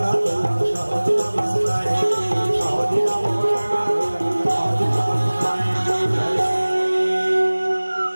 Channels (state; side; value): inverted; both; correlation -1.00